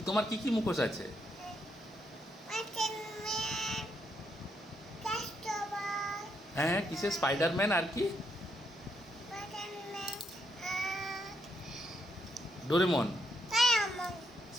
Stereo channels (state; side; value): normal; both; correlation 0.77